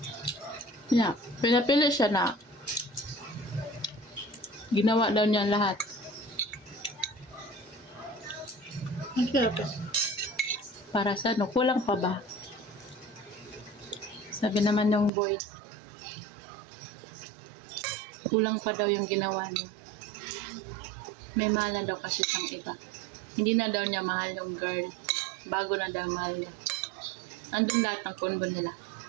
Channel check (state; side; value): drops out; left; at 15.1 s